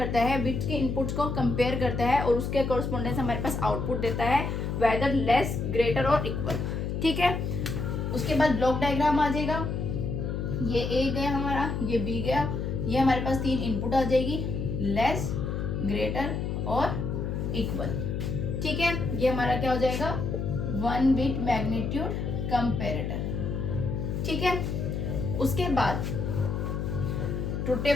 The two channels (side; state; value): left; noise; hum, 2 dB below the sound